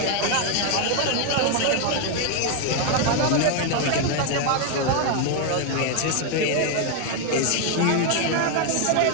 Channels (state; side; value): different; both; correlation 0.01